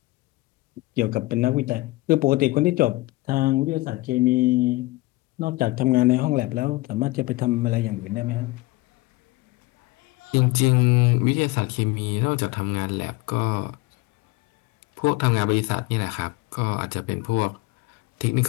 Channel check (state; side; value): quieter; right; 20.9 dB